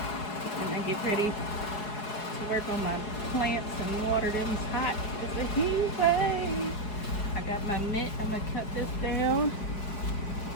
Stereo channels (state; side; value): late; right; 4.7 ms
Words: And I get ready to work on my plants and water them. It's hot. It's a heat wave. I got my mitt. I'm gonna cut this down.